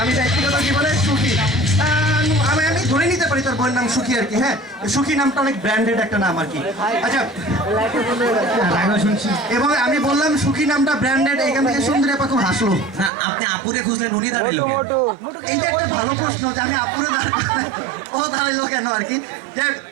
আমি ব্যক্তিগত জীবনে সুখী। আমি ধরে নিতে পারি তার বইয়ের নাম সুখী আর কি। হ্যাঁ, সুখী নামটা অনেক ব্র্যান্ডেড একটা নাম আর কি। আচ্ছা, এবং আমি বললাম সুখী নামটা ব্র্যান্ডেড, এখান থেকে সুন্দরী আপা খুব হাসলো। আপনি আপুরে খুঁজলেন, উনি দাঁড়াইলো কেন? এইটা একটা ভালো প্রশ্ন যে আমি আপুরে ও দাঁড়াইলো কেন আর কি। যে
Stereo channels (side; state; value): left; drops out; at 13.1 s